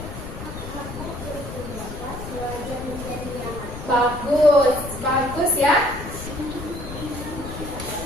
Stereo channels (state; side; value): noise; left; rumble, 9 dB below the sound